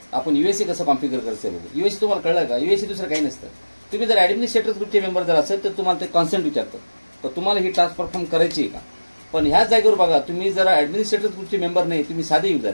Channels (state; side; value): inverted; both; correlation -1.00